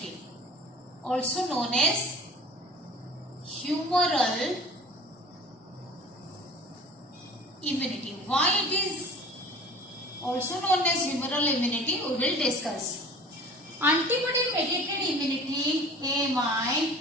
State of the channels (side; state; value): both; normal; correlation 0.43